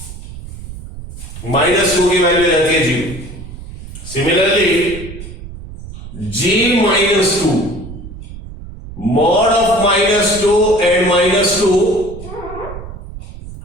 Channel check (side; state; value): right; noise; rumble, 13 dB below the sound